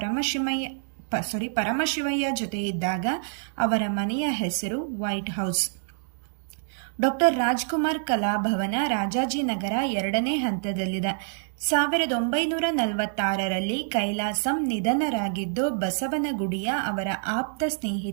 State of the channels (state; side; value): silent; left; digital silence